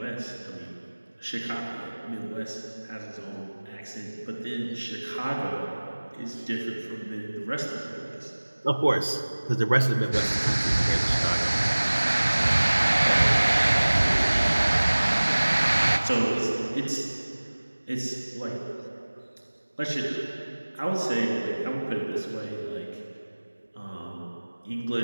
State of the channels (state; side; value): inverted; both; correlation -1.00